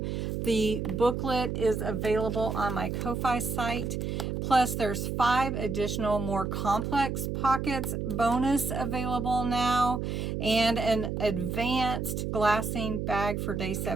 The booklet is available on my Ko-Fi site. Plus, there's 5 additional more complex pockets bonus available now, and an advanced glassine bag for day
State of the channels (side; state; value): right; noise; hum, 2 dB below the sound